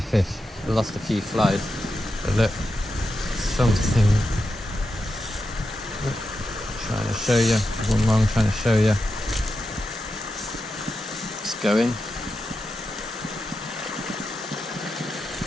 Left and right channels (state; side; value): normal; both; correlation 0.88